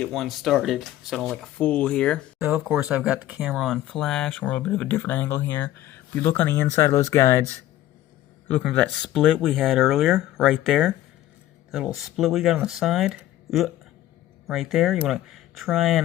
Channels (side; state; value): right; quieter; 14.0 dB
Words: one started so I don't look like a fool here. So of course I've got the camera on flash. We're a little bit of a different angle here. If you look on the inside of those guides, you're looking for that split we had earlier, right there. That little split we got on the side, right there. You want to try